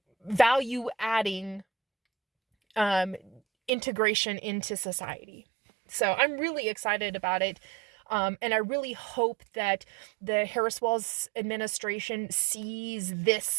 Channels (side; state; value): left; drops out; at 3.7 s